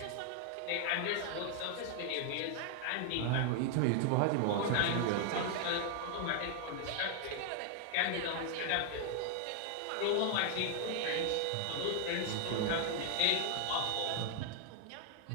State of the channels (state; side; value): different; both; correlation 0.00